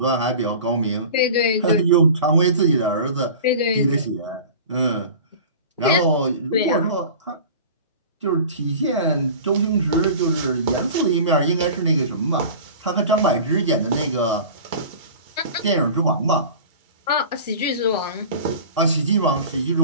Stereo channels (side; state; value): both; inverted; correlation -0.38